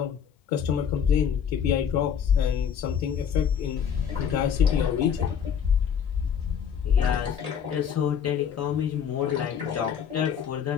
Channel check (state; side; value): quieter; right; 7.9 dB